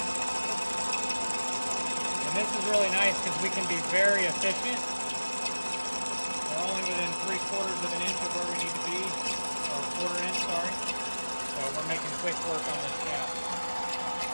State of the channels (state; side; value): inverted; both; correlation -1.00